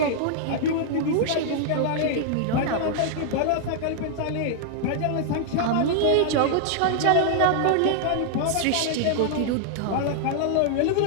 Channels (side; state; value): both; different; correlation -0.01